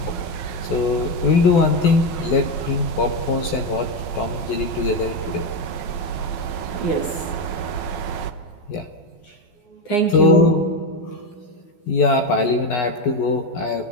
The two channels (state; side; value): late; right; 12 ms